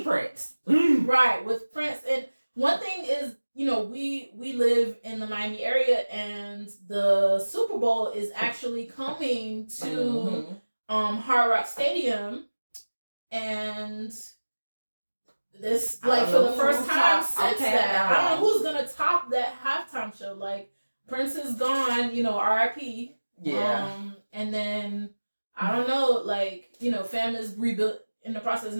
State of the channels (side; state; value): both; inverted; correlation -1.00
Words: Prince, right, with Prince. And one thing is, we live in the Miami area, and the Super Bowl is actually coming to Hard Rock Stadium, and this like for the first time since that, I don't know who's gonna top that halftime show. Like, Prince is gone, R.I.P. Yeah. And then I don't know, like, fam is in the process